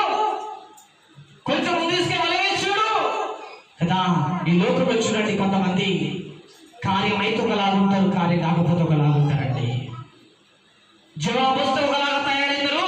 కొంచెం ముందు తీసుకుని వలవేసి చూడు కదా. ఈ లోకంలో చూడండి, కొంతమంది కార్యం అయితే ఒకలాగుంటారు, కార్యం కాకపోతే ఒకలాగుంటారండి. జవాబు వస్తే ఒకలాగా తయారైతారు,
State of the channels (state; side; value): identical; both; correlation 1.00